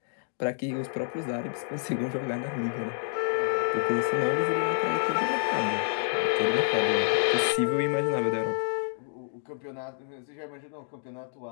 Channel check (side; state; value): right; silent; digital silence